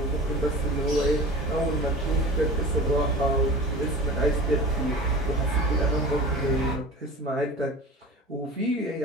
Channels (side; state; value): both; normal; correlation 0.36